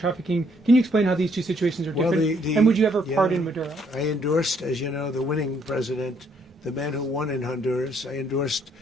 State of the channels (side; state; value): both; normal; correlation 0.68